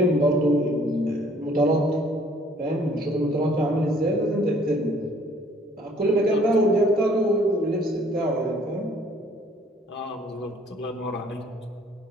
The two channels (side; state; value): both; normal; correlation 0.59